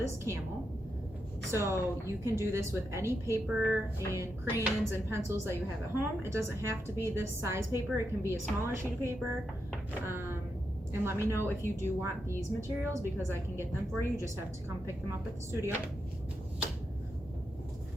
camel. So you can do this with any paper and crayons and pencils that you have at home. It doesn't have to be this size paper, it can be a smaller sheet of paper. And let me know if you do want these materials because I can get them for you. You just have to come pick them up at the studio.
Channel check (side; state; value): both; normal; correlation 0.85